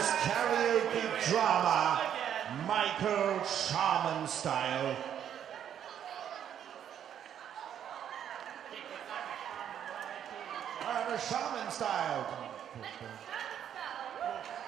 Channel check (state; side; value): quieter; left; 9.5 dB